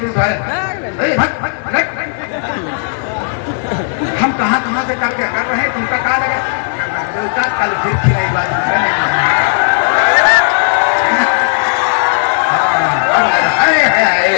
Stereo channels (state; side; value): silent; right; digital silence